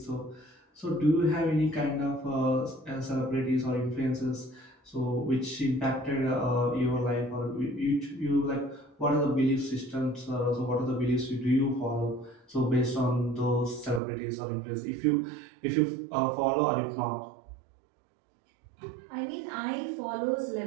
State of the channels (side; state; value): left; drops out; at 14.0 s